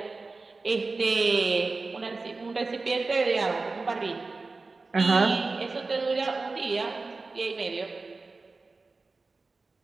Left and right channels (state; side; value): quieter; left; 3.7 dB